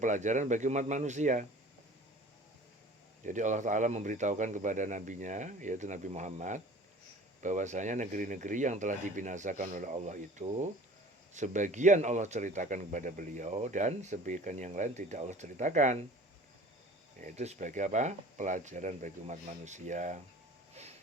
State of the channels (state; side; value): normal; both; correlation 0.46